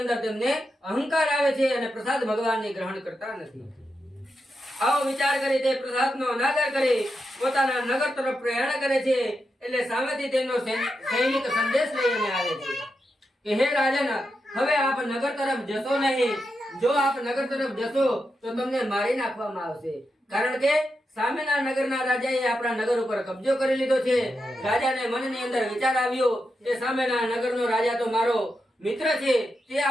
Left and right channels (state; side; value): normal; both; correlation 0.87